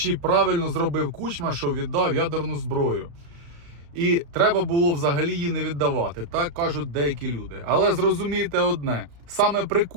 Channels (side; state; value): left; late; 35 ms